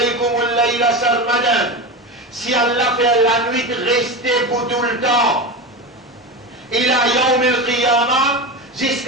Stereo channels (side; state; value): both; normal; correlation 0.22